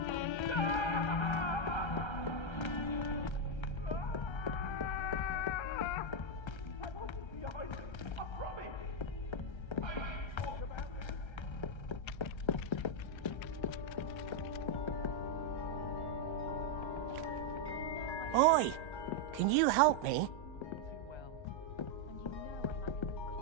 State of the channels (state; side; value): late; right; 1.3 ms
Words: Oi! Can you help me?